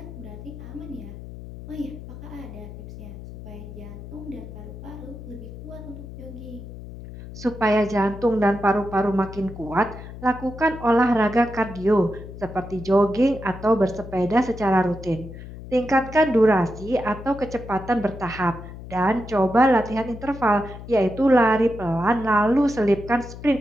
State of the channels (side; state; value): left; noise; hum, 13 dB below the sound